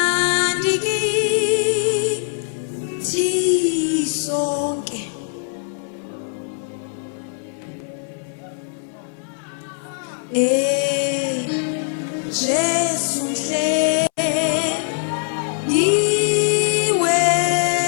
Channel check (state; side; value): silent; right; 63 dB below the other